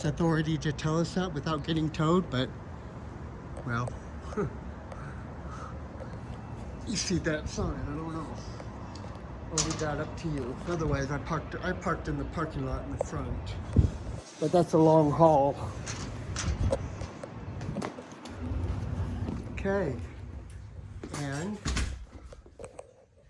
authority to tell us that without getting towed, but, well, you see that sign, I don't know. I'll leave that up to you. Otherwise, I parked in the parking lot in the front. But that's a long haul. Okay. And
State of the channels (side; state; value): both; identical; correlation 1.00